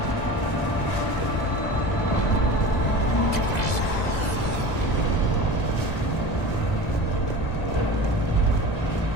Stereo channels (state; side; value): late; right; 2.0 ms